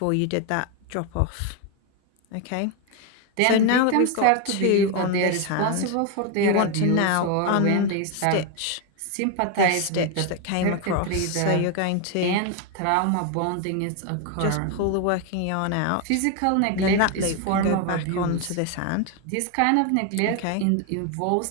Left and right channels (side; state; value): both; different; correlation 0.01